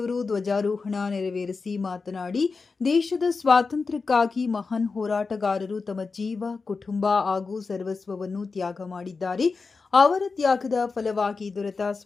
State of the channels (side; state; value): right; quieter; 4.5 dB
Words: ಧ್ವಜಾರೋಹಣ ನೆರವೇರಿಸಿ ಮಾತನಾಡಿ, ದೇಶದ ಸ್ವಾತಂತ್ರ್ಯಕ್ಕಾಗಿ ಮಹಾನ್ ಹೋರಾಟಗಾರರು ತಮ್ಮ ಜೀವ, ಕುಟುಂಬ ಹಾಗೂ ಸರ್ವಸ್ವವನ್ನು ತ್ಯಾಗ ಮಾಡಿದ್ದಾರೆ. ಅವರ ತ್ಯಾಗದ ಫಲವಾಗಿ ದೊರೆತ